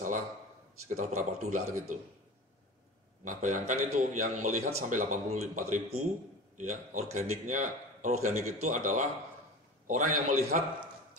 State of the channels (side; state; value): both; normal; correlation 0.35